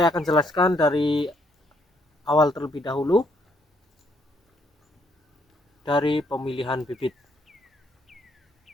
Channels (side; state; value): both; normal; correlation 0.71